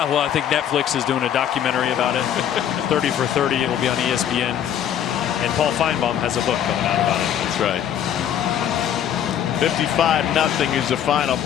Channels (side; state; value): right; quieter; 9.8 dB